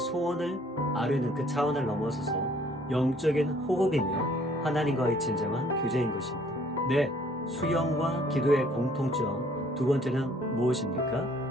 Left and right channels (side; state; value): both; normal; correlation 0.60